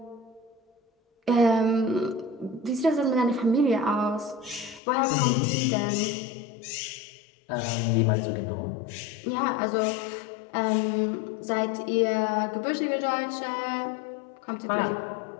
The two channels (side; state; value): right; drops out; at 4.8 s